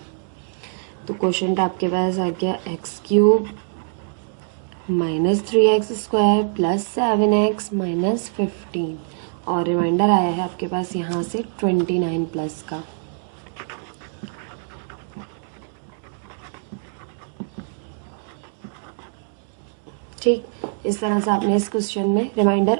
तो कोशेंट आपके पास आ गया x³ minus 3x² plus 7x minus 15 और रिमाइंडर आया है आपके पास यहाँ से 29 प्लस का। ठीक, इस तरह से आपने इस क्वेश्चन में रिमाइंडर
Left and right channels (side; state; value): left; silent; digital silence